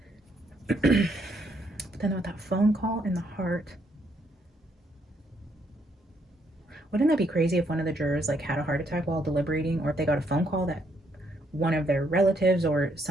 But then with that phone call in the heart, wouldn't that be crazy if one of the jurors like had a heart attack while deliberating, or if they got a phone call that one of their relatives or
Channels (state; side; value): normal; both; correlation 0.73